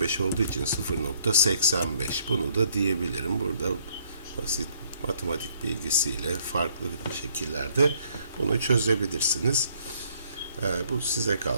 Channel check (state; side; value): inverted; both; correlation -0.66